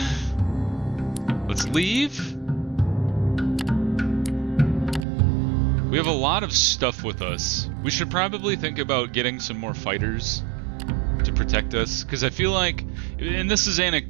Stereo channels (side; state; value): left; drops out; at 5.1 s